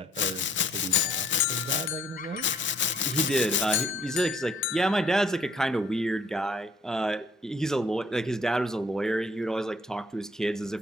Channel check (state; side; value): normal; both; correlation 0.63